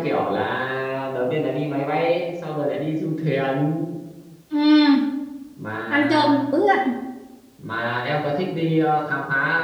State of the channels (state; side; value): identical; both; correlation 1.00